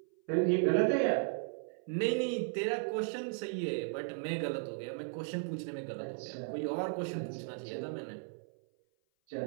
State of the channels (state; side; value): silent; left; 54 dB below the other